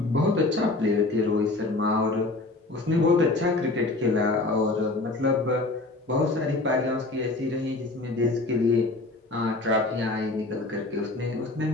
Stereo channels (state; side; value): quieter; right; 3.1 dB